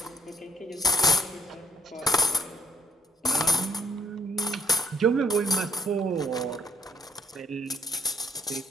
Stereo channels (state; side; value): normal; both; correlation 0.71